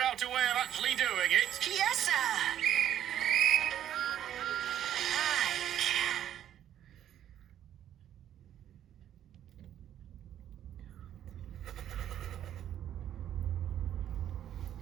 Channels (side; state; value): left; quieter; 10.8 dB